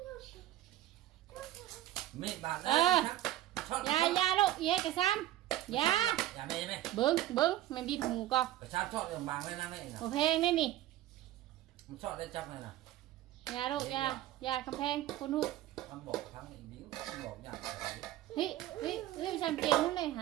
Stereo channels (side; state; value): left; quieter; 14.4 dB